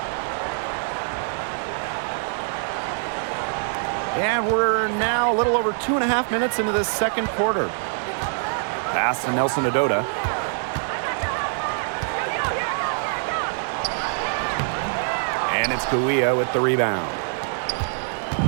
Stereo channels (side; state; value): left; silent; digital silence